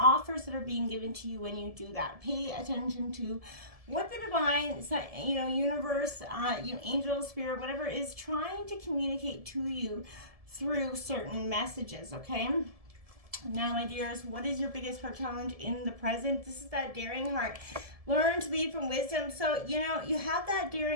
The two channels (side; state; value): left; late; 1.7 ms